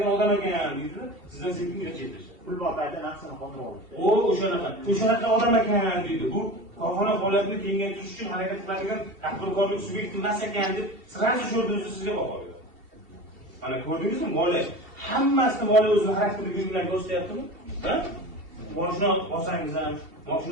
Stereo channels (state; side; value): late; left; 2.7 ms